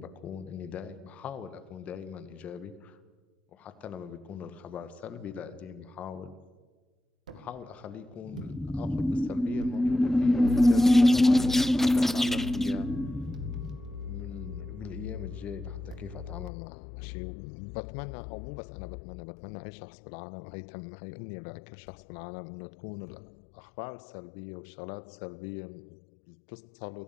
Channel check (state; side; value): drops out; right; at 16.5 s